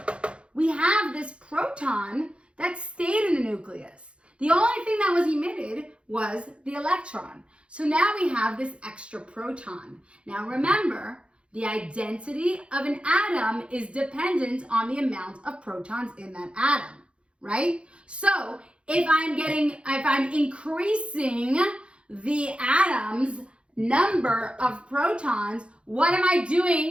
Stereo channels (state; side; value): late; left; 0.059 ms